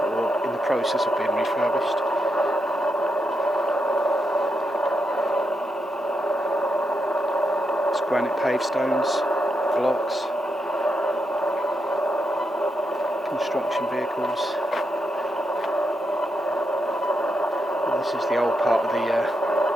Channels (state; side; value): normal; both; correlation 0.83